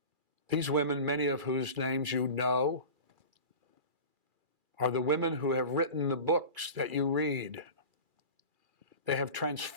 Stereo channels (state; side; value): late; left; 2.4 ms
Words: These women, many of whose names you know, are the women who have written the books that you read. They have